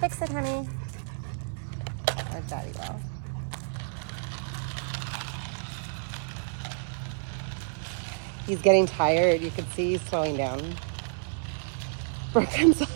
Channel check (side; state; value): left; silent; 58 dB below the other